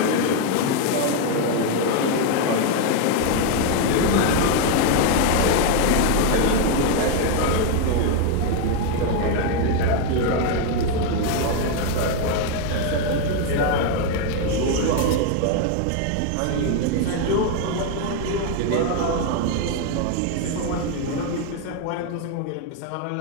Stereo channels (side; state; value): both; different; correlation 0.01